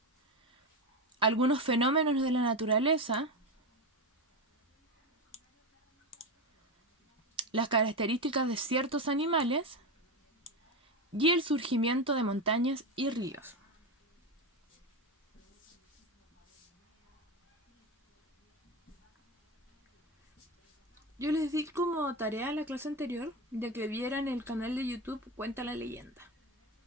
algunos fenómenos de la naturaleza, las características de ciertos animales y el surgimiento de montañas y ríos. Yo les di como tarea a la clase anterior de que vieran el canal de YouTube Cuenta la Leyenda.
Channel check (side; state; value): both; normal; correlation 0.16